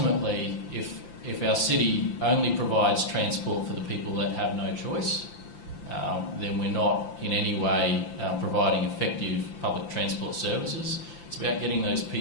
if our city only provides transport for the people that have no choice, then we're not in any way providing effective public transport services. It's about getting those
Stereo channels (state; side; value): late; right; 5.8 ms